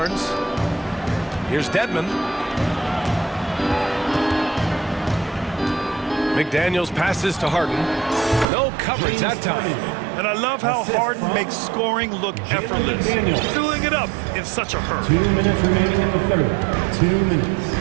Here's Dedmon. McDaniels passes to Harden. No coverage that time. And I love how Harden makes scoring look effortless. Filling it up in such a hurry. 2 minutes remaining in the third. 2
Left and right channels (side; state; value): left; drops out; at 8.5 s